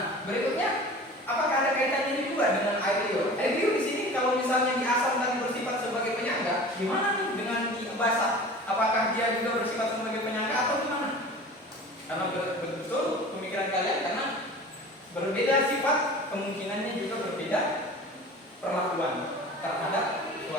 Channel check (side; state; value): both; normal; correlation 0.39